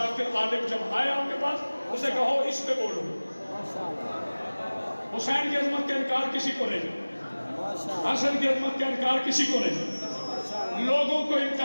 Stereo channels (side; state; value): both; inverted; correlation -1.00